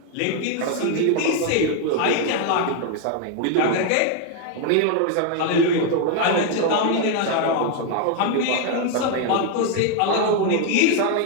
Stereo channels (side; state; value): both; different; correlation 0.01